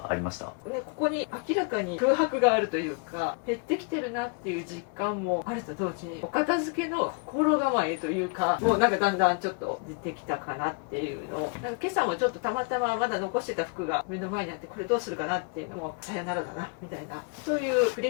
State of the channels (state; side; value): quieter; right; 34.9 dB